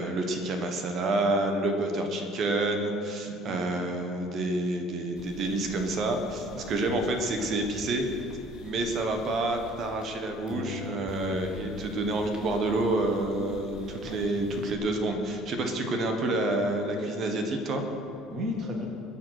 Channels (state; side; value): normal; both; correlation 0.55